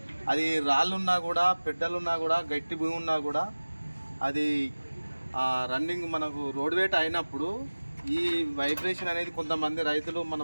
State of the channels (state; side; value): inverted; both; correlation -1.00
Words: అది రాళ్ళున్నా కూడా పెద్దలున్నా కూడా గట్టి భూమి ఉన్నా కూడా అది రన్నింగ్ మనకు రోడ్ వేట్ అయినప్పుడు ఈ వైబ్రేషన్ అనేది కొంతమంది రైతులు మన